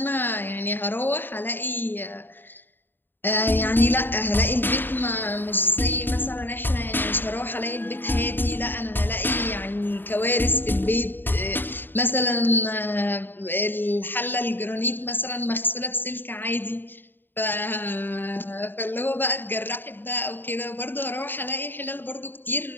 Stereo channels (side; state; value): right; late; 0.095 ms